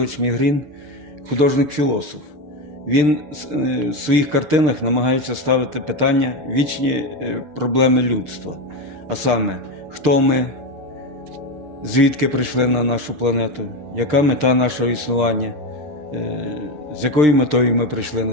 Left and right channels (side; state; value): left; late; 6.6 ms